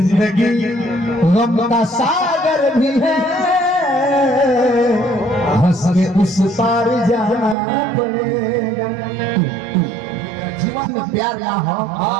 गम का सागर भी है, हंस के उस पार जाना पड़ेगा। जीवन में प्यार ना हो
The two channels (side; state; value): left; drops out; at 7.6 s